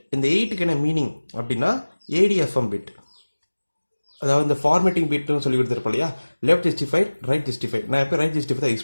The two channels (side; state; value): both; inverted; correlation -1.00